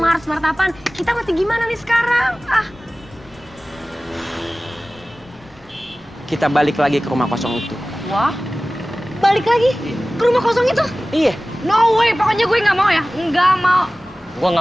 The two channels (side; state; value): both; normal; correlation 0.97